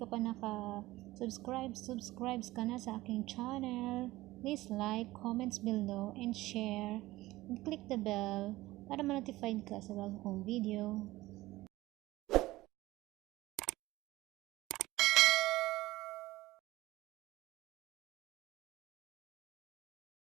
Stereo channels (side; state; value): left; quieter; 18.0 dB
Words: pa subscribe ka na sa aking channel. Please like, comments below, and share. And click the bell para ma-notified ka sa bago kong video.